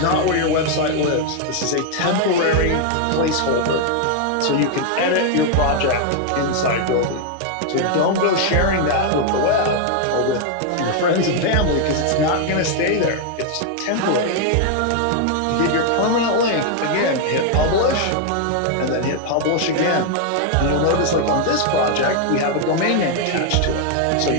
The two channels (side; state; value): both; different; correlation 0.00